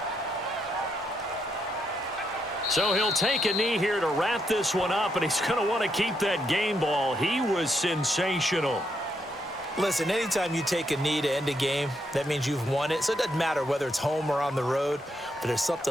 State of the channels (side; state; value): both; normal; correlation 0.78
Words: So he'll take a knee here to wrap this one up, and he's going to want to keep that game ball. He was sensational. Listen, anytime you take a knee to end a game, that means you've won it. So it doesn't matter whether it's home or on the road, but there's